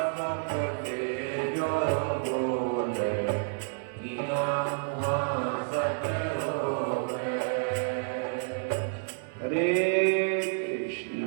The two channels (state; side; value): silent; left; 58 dB below the other